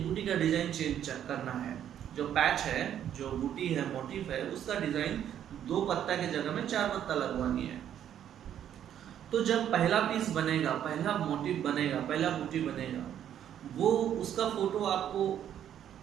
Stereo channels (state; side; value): quieter; left; 10.1 dB